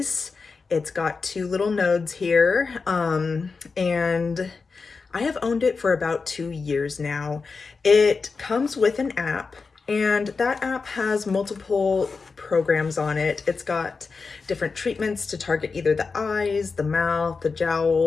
It's got two little nodes here, and I have owned it for about 2 years now. It comes with an app, and that app has multiple programs on it. It's got different treatments to target either the eyes, the mouth, the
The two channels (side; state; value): right; quieter; 4.6 dB